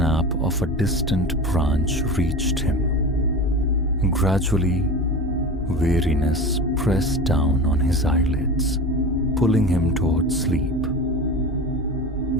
of a distant branch reached him. Gradually, weariness pressed down on his eyelids, pulling him towards sleep.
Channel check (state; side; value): normal; both; correlation 0.30